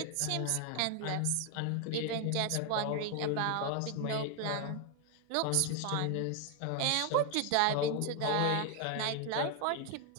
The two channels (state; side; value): different; both; correlation 0.00